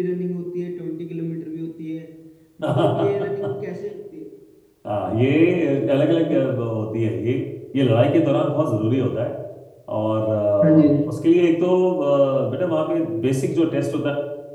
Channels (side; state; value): both; identical; correlation 1.00